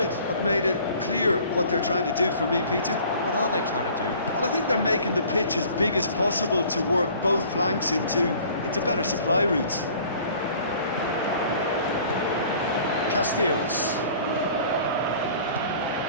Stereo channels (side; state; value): both; inverted; correlation -0.50